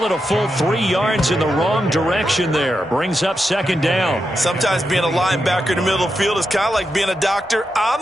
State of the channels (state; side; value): normal; both; correlation 0.86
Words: it a full 3 yards in the wrong direction there. Brings up 2nd down. Sometimes being a linebacker in the middle of the field is kind of like being a doctor